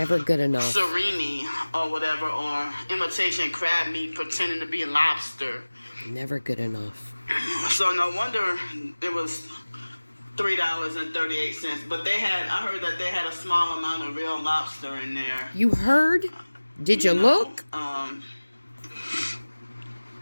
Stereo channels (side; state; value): both; inverted; correlation -1.00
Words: good enough. Surimi or whatever, or imitation crab meat pretending to be lobster. Never good enough. So no wonder it was $3.38. But I heard that they had a small amount of real lobster in there. You heard? Did you look?